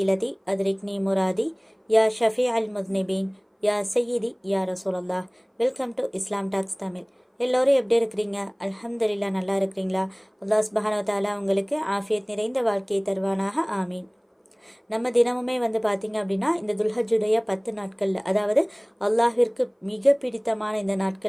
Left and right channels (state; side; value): identical; both; correlation 1.00